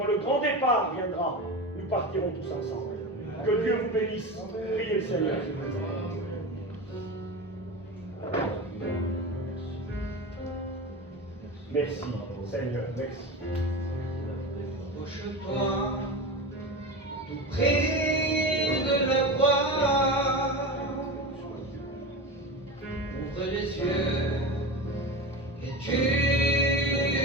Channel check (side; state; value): both; normal; correlation 0.25